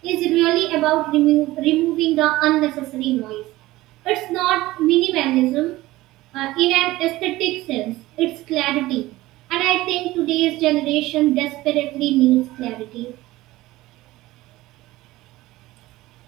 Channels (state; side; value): quieter; left; 17.9 dB